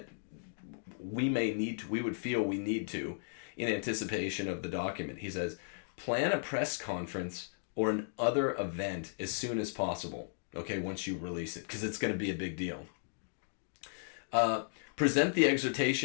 we would feel we need to in anticipation of the document. He says, plan a press conference or an other event as soon as possible. Okay, once you release it, because it's going to be a big deal. Present the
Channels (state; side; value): silent; right; digital silence